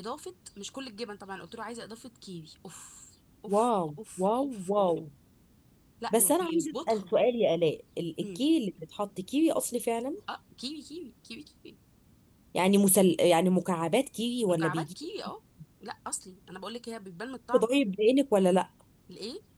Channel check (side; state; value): both; identical; correlation 1.00